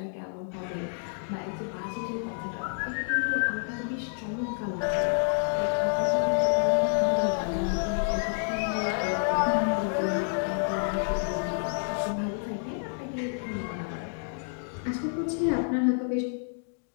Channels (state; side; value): silent; right; 59 dB below the other